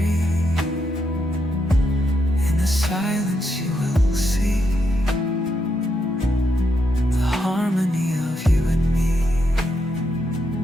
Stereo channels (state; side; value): normal; both; correlation 0.81